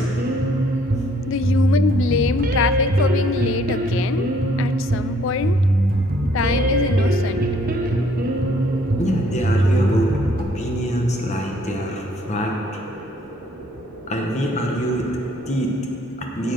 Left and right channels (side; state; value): both; normal; correlation 0.63